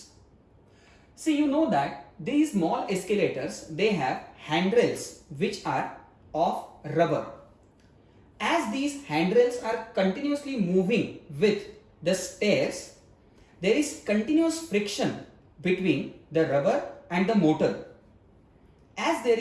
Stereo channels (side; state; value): both; identical; correlation 1.00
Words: See, you know that these mall escalators, they have handrails which are of rubber. As these handrails are continuously moving with the stairs, there is continuous friction between the rubber and the motor. As there